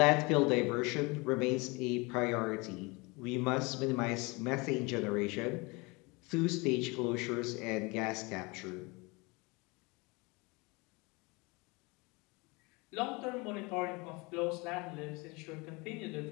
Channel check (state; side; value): quieter; right; 26.7 dB